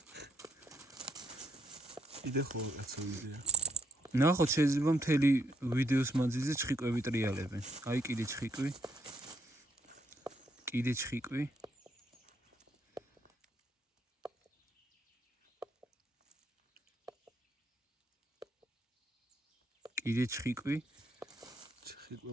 იდე ხო კაცო იდეა. ნახოთ, შეიძლება მთელი ვიდეოს მანძილზე ჩხიკვები ტრიალებენ. აი კიდე ჩხიკვი. კიდე ჩხიკვი. კიდე ჩხიკვი.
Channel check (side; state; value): both; normal; correlation 0.75